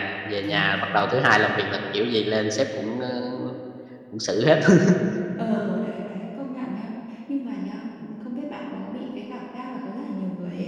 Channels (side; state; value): both; identical; correlation 1.00